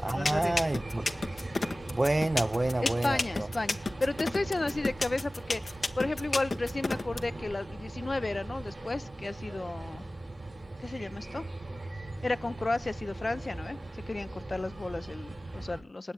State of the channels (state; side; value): normal; both; correlation 0.97